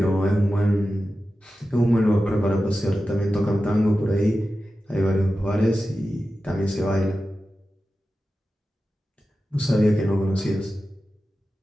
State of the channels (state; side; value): normal; both; correlation 0.93